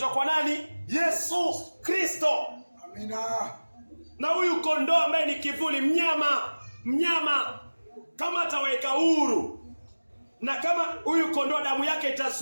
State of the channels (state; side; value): inverted; both; correlation -1.00